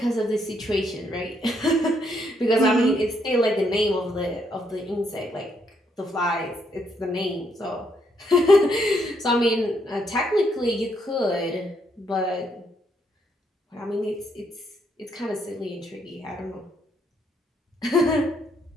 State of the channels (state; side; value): normal; both; correlation 0.74